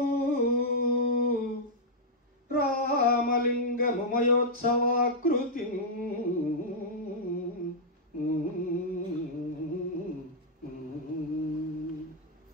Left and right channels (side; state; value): both; normal; correlation -0.07